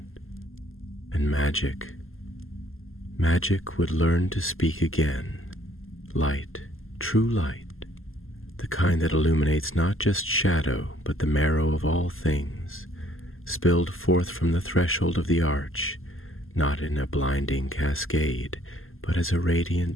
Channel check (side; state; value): right; late; 0.60 ms